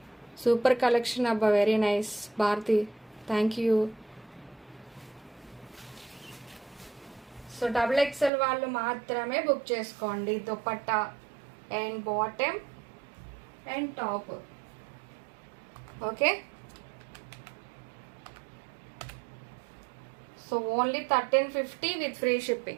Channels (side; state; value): left; drops out; at 8.3 s